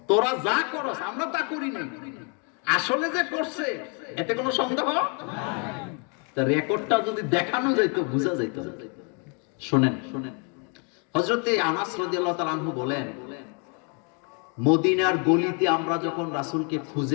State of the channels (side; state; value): right; quieter; 36.9 dB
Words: তোরা যা করস আমরা তা করি নাই, আসলে যে করছে এতে কোনো সন্দেহ তা রেকর্ডটা যদি দেখানো যাইতো বোঝা যাইতো। শুনেন শুনেন, হযরতে আনাস রাদিয়াল্লাহু তাআলা আনহু বলেন, মদিনার গলিতে আমরা যখন রাসূলকে